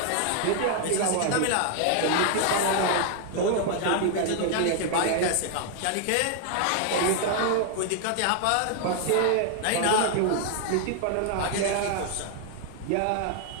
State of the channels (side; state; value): both; different; correlation 0.00